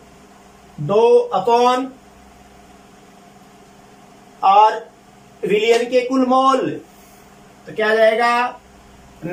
अपॉन और विलियन के कुल मोल तो क्या आ जाएगा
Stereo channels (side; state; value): both; identical; correlation 1.00